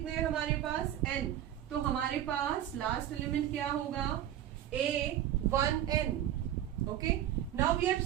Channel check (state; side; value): quieter; left; 11.6 dB